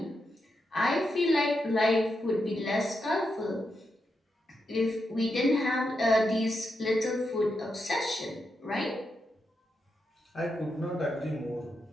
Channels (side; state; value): both; normal; correlation 0.85